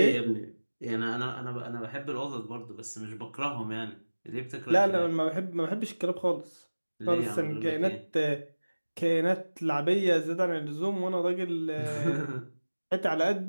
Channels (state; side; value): inverted; both; correlation -1.00